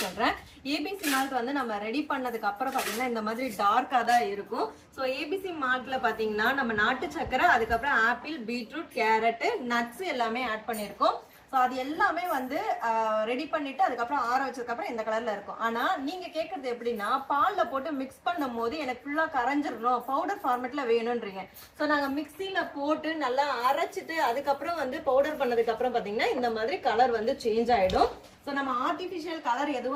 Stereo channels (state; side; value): identical; both; correlation 1.00